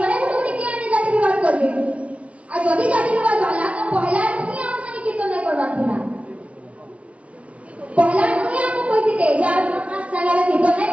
মানে কোটি কি আনি জাতি বিভাগ করবে আর যদি জাতি বিভাগ হলা তো পহলা তুমি कीर्तन नहीं करवा थी ना पहला मुझे आपको कोई थी तेज यार अपना चला के कीर्तन नहीं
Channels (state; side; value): late; left; 0.064 ms